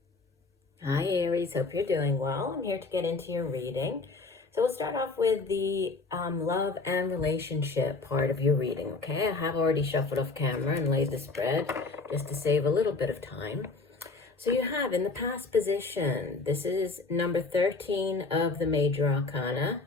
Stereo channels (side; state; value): right; quieter; 3.8 dB